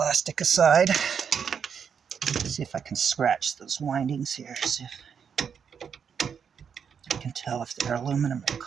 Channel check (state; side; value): quieter; left; 7.0 dB